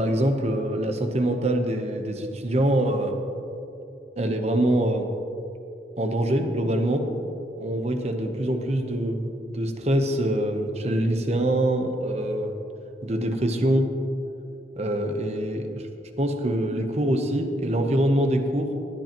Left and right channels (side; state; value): both; normal; correlation 0.72